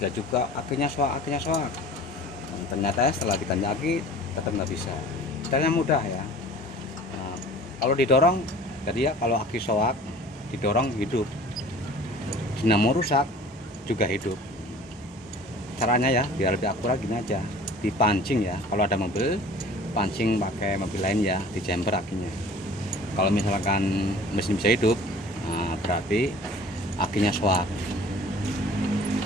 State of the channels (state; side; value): normal; both; correlation 0.46